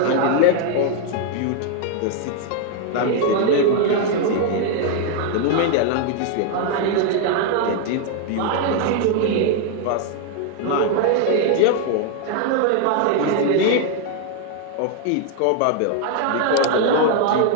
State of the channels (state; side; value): different; both; correlation 0.00